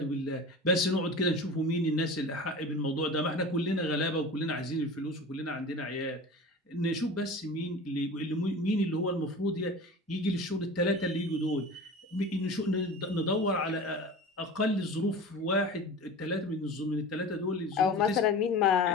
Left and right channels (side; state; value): both; normal; correlation 0.35